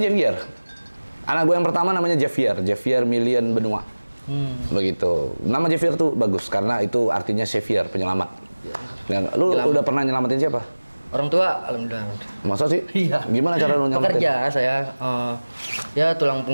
Anak gue yang pertama namanya Javier Million Benua. Begitu. Nama Javier tuh bagus karena itu artinya savior, penyelamat. Ya. Lu udah pernah nyelamatin siapa? Orang tua, alhamdulillah. Masa sih? Iya. Gimana cara lu nyelamatin? Pekerja saya, ya tulang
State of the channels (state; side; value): inverted; both; correlation -1.00